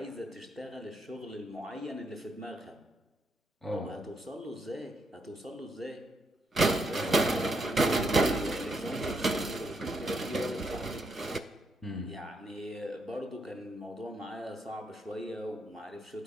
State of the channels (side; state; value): both; normal; correlation 0.77